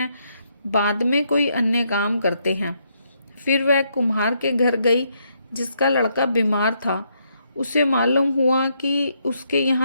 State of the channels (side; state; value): both; inverted; correlation -0.76